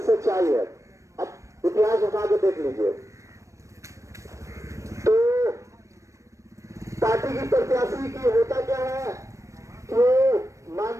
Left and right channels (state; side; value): late; left; 0.15 ms